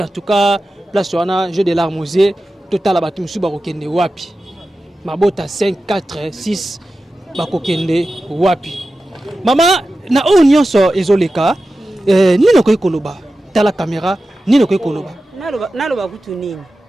en tout cas place wana jeu de l'armosier total batu musu bakokende wapi mabota 5 4 6 bakokende wapi Maman, na o nyonso ezoleka, nino koy koloba, tala caméra, nino koy koloba. Naloba kutu nini.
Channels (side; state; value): both; normal; correlation 0.93